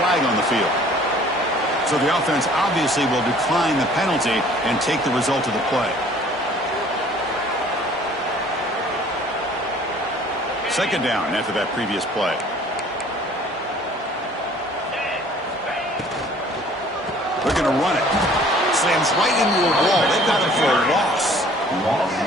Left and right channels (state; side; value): normal; both; correlation 0.53